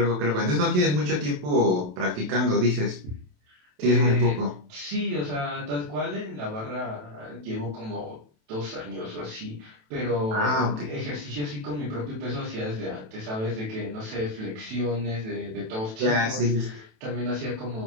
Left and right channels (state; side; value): late; left; 27 ms